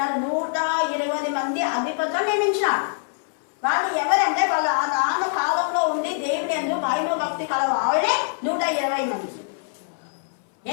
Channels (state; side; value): silent; right; 61 dB below the other